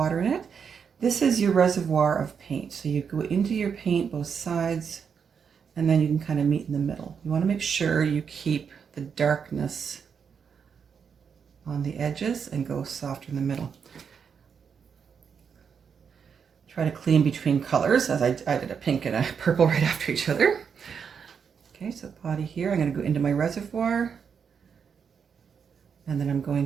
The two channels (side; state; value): left; quieter; 6.7 dB